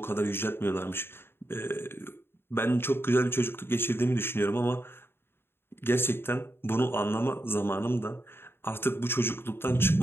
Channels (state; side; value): late; right; 0.11 ms